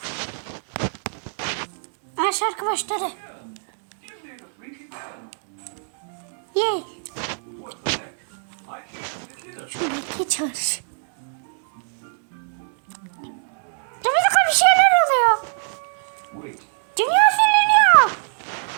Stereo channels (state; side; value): silent; left; digital silence